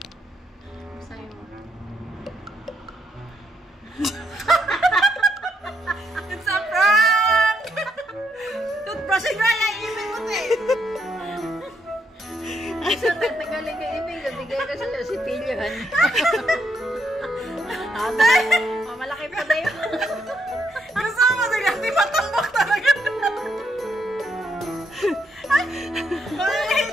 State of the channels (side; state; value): both; normal; correlation 0.76